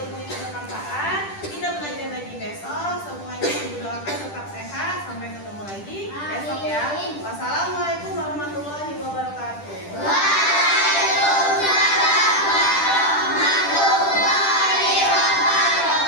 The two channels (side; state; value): right; late; 10 ms